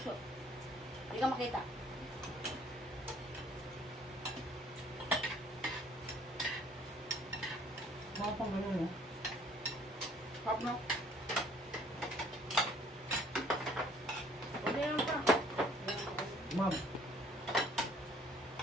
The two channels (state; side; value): normal; both; correlation 0.58